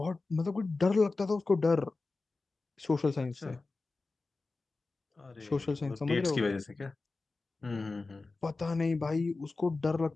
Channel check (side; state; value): right; quieter; 3.6 dB